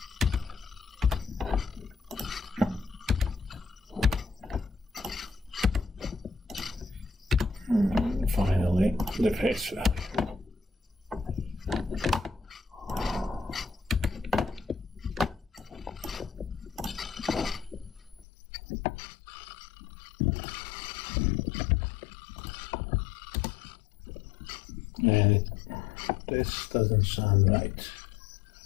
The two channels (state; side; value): drops out; right; at 18.2 s